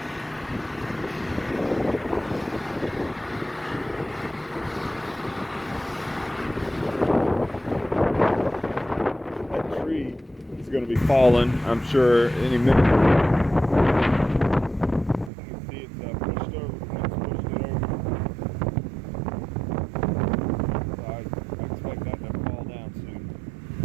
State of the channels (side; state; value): left; drops out; at 15.3 s